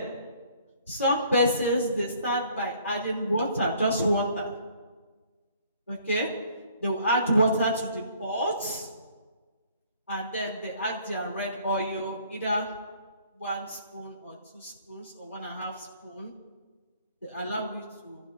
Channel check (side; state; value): both; inverted; correlation -0.58